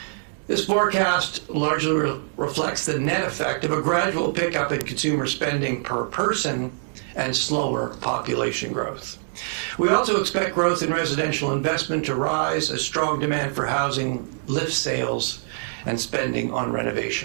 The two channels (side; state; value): left; silent; digital silence